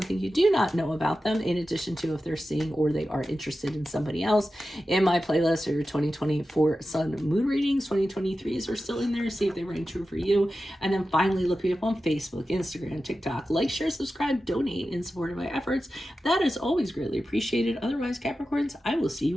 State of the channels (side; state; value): both; normal; correlation 0.93